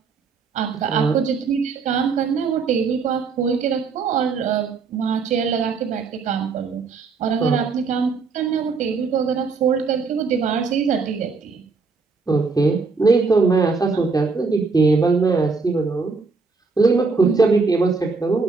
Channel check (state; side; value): quieter; left; 4.6 dB